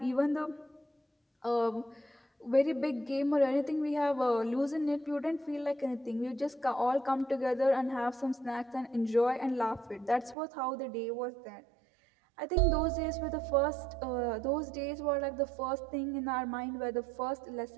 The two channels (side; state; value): left; drops out; at 10.4 s